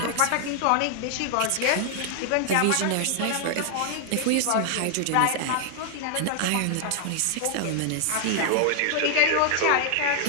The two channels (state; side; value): different; both; correlation 0.00